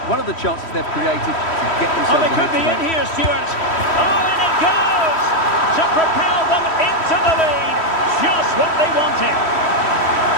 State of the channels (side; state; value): right; late; 3.1 ms